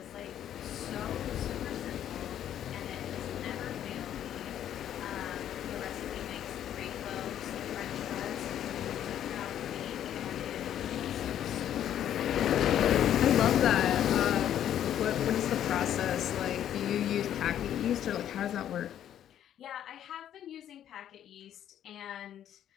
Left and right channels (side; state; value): right; quieter; 10.7 dB